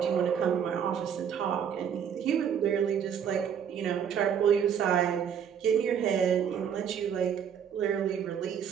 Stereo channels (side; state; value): left; quieter; 8.1 dB